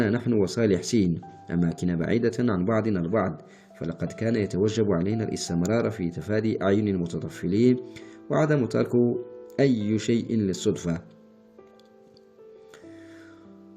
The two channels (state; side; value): identical; both; correlation 1.00